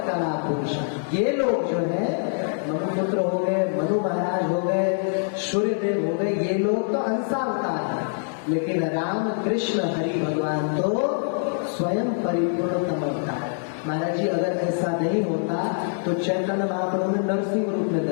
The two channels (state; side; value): silent; right; digital silence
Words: कला पुरुष। ये लोग जो है मनुपुत्र हो गए, मनु महाराज हो गए, सूर्यदेव हो गए, ये लोग तो अंशावतार हैं, लेकिन राम कृष्ण हरि भगवान तो स्वयं परिपूर्णतम अवतार। महाराज जी अगर ऐसा नहीं होता तो चैतन्य महाप्रभु ने नरसिंह रूप में